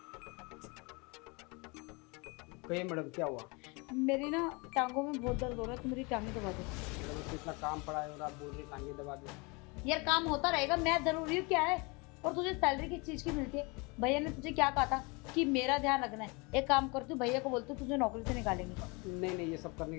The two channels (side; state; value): right; quieter; 28.7 dB